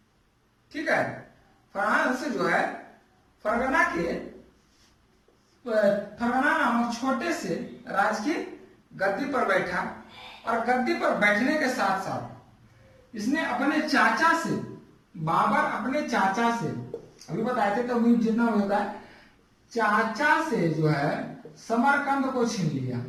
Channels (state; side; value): identical; both; correlation 1.00